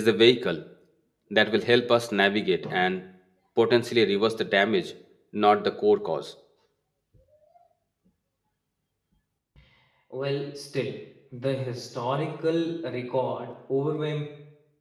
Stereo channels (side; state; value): both; identical; correlation 1.00